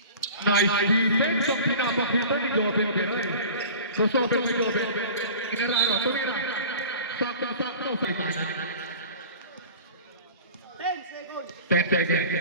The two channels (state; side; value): inverted; both; correlation -0.40